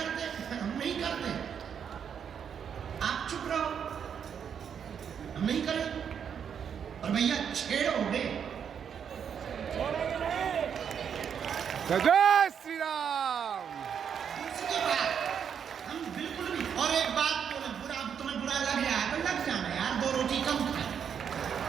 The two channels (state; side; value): quieter; left; 7.7 dB